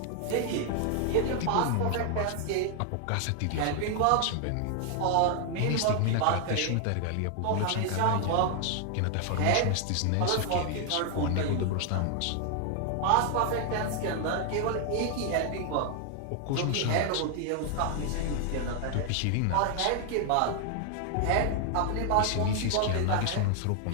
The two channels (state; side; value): different; both; correlation 0.00